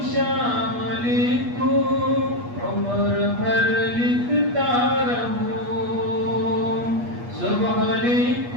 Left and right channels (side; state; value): left; late; 8.4 ms